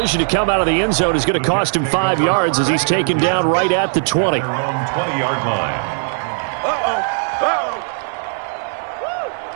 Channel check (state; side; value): silent; left; 67 dB below the other